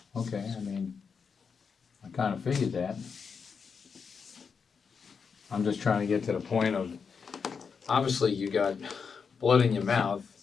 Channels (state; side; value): quieter; right; 5.9 dB